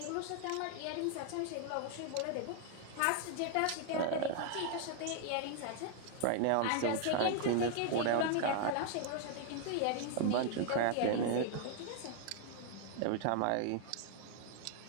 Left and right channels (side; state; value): both; different; correlation 0.00